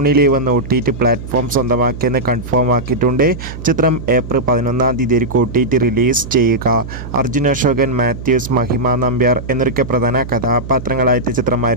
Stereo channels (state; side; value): noise; right; hum, 10 dB below the sound